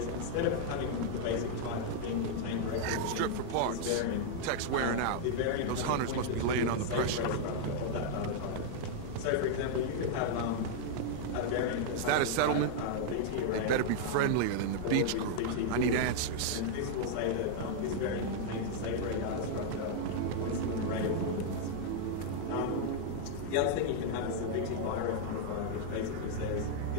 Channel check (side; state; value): both; different; correlation -0.01